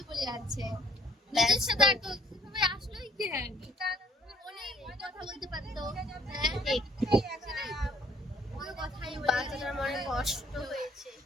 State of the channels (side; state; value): both; normal; correlation 0.61